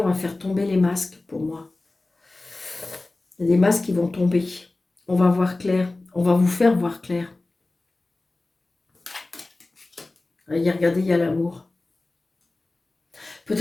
va faire tomber les masques pour moi. Il y a des masques qui vont tomber. On va voir clair. On va vous faire voir clair. Regardez, il y a l'amour.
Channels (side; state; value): right; quieter; 3.1 dB